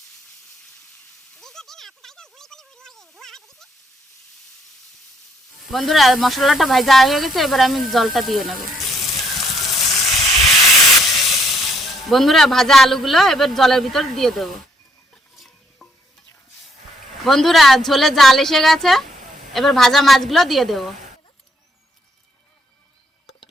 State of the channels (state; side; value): normal; both; correlation 0.70